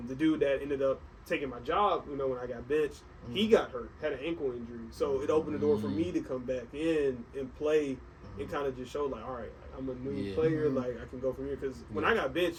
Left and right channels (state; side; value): identical; both; correlation 1.00